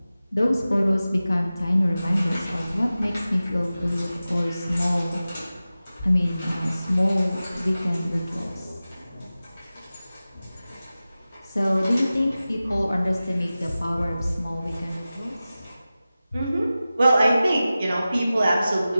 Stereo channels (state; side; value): inverted; both; correlation -0.95